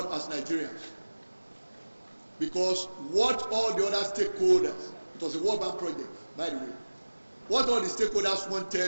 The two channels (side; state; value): both; inverted; correlation -1.00